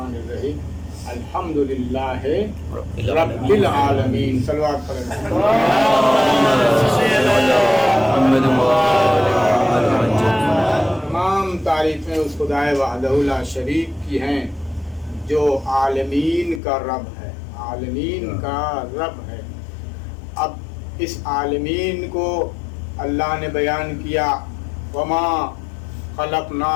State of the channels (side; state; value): right; drops out; at 16.6 s